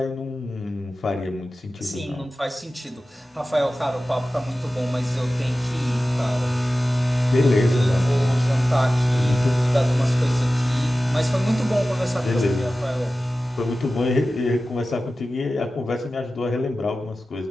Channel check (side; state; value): both; normal; correlation 0.95